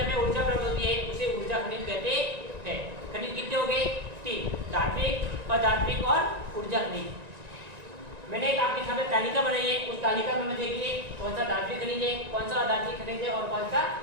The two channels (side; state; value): left; late; 1.9 ms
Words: ऊर्जा प्राप्त होती है उसे ऊर्जा खनिज कहते हैं। खनिज कितने हो गए? 3। धात्विक, अधात्विक और ऊर्जा खनिज। मैंने एक आपके सामने तालिका बनाई है, उस तालिका में देखिए कौन सा धात्विक खनिज है, कौन सा अधात्विक खनिज है और कौन सा